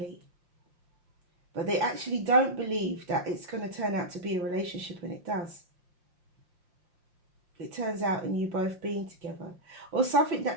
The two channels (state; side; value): late; left; 5.7 ms